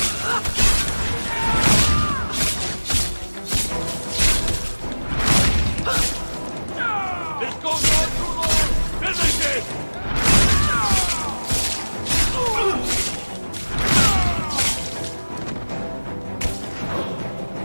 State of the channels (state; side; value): inverted; both; correlation -1.00